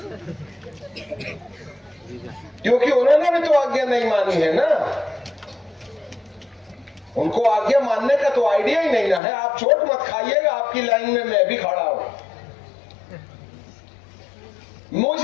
क्योंकि उन्होंने भी तो आज्ञा नहीं मानी है ना, उनको आज्ञा मानने का तो आइडिया ही नहीं ना है। आप चोट मत खाइएगा, आपकी लाइन में मैं भी खड़ा हूं।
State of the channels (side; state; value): right; drops out; at 9.2 s